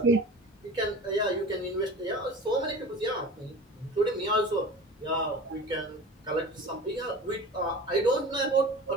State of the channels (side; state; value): both; normal; correlation 0.37